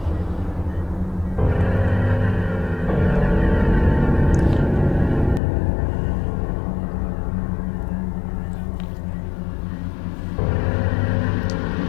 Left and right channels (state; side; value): drops out; right; at 5.4 s